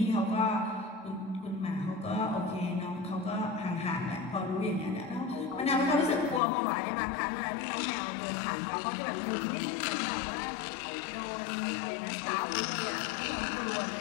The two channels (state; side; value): drops out; right; at 6.4 s